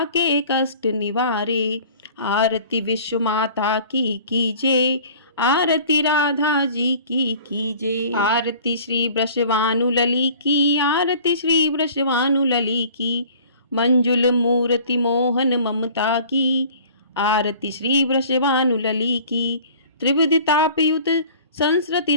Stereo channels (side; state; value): both; inverted; correlation -0.48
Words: के कष्ट निवारे। आरती विश्व माता की कीजिए, आरती राधा जी की कीजिए। आरती श्री वृषभानु लली की, आरती श्री वृषभानु लली की। मंजुल मूर्ति मोहन ममता की, आरती श्री वृषभानु लली की। त्रिविध तापयुत संस्कृति